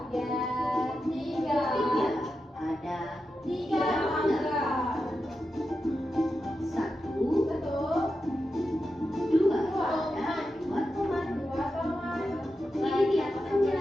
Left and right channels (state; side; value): normal; both; correlation 0.89